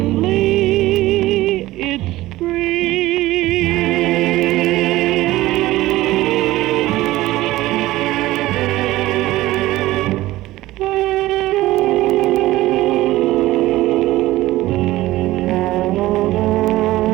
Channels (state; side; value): quieter; left; 17.0 dB